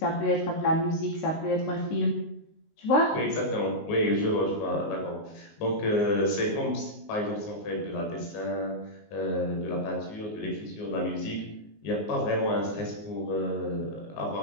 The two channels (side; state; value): right; late; 19 ms